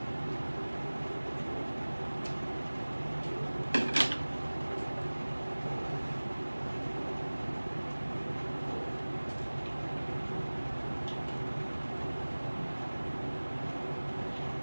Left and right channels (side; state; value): both; inverted; correlation -1.00